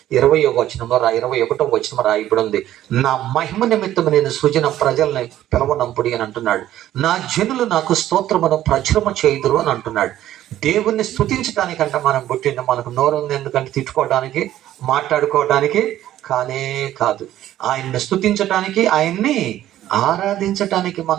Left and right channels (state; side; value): quieter; left; 12.9 dB